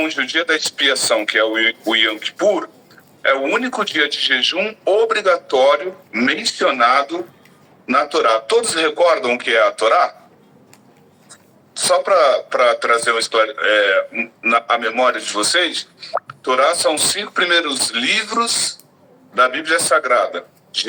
o dia da expiação, que é o Yom Kippur, é o único dia de jejum obrigatório mencionado na Torá. Todos recordam o que é a Torá? Só para trazer a memória de vocês, Torá são os 5 primeiros livros da Bíblia Sagrada:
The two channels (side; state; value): both; identical; correlation 1.00